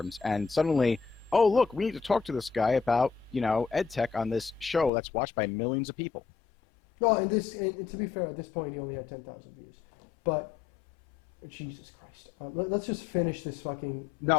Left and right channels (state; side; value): drops out; right; at 4.9 s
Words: and suddenly, oh, look, we need to talk to this guy about, you know, edtech on this show that's watched by millions of people. No, and to be fair, at this point he only had 10,000 views. But Jesus Christ, let's just finish this fucking